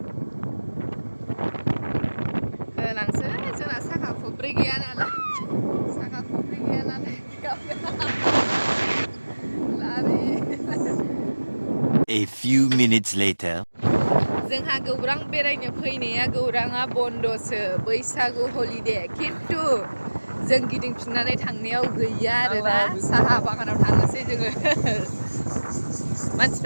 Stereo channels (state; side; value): inverted; both; correlation -1.00